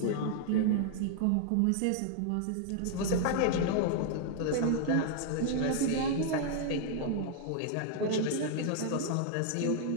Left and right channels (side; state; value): both; different; correlation 0.00